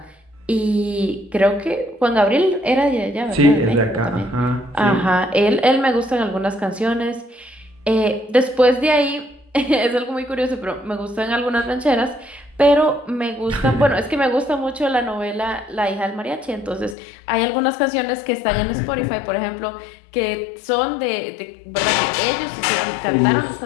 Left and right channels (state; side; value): drops out; right; at 16.9 s